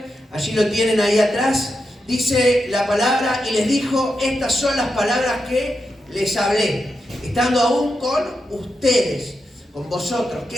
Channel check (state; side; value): normal; both; correlation 0.87